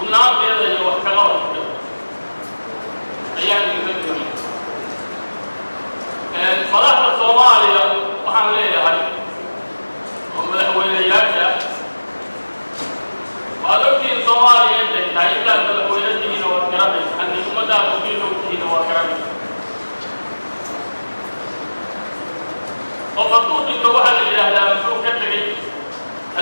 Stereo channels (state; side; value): inverted; both; correlation -1.00